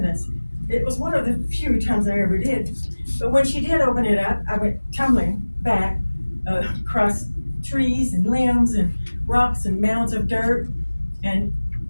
It was one of the few times I ever did. But when she did open it up, I went tumbling back across trees and limbs and rocks and mounds of dirt. And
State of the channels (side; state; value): both; inverted; correlation -1.00